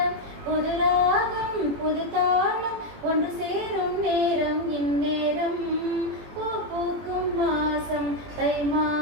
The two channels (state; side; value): late; left; 21 ms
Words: புது ராகம் புது தாளம் ஒன்று சேரும் நேரம் இந்நேரம், பூ பூக்கும் மாசம் தை